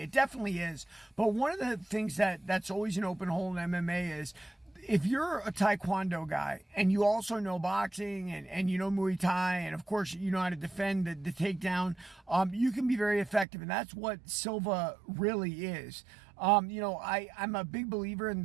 It definitely is. But one of the things that's always an open hole in MMA is, if you're a Taekwondo guy and you also know boxing and you know Muay Thai, and of course you know how to defend the takedown, you can be very effective. And that's what Silva really is. I'm a big believer in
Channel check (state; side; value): drops out; left; at 13.5 s